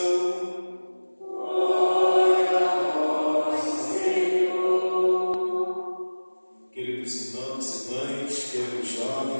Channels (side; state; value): both; inverted; correlation -1.00